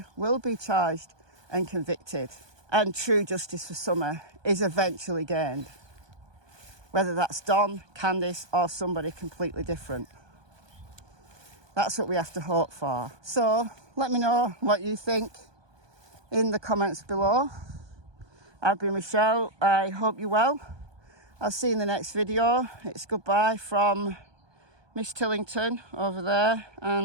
will be charged and convicted, and true justice for Summer is eventually gained, whether that's Don, Candice, or somebody completely different. That's what we have to hope for. So let me know what you think in the comments below. I've been Michelle. I hope you're well. I'll see you in the next video. It's goodbye from Miss Tillington over there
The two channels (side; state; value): left; late; 1.2 ms